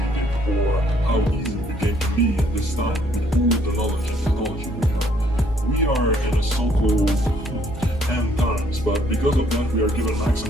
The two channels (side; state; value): both; normal; correlation 0.66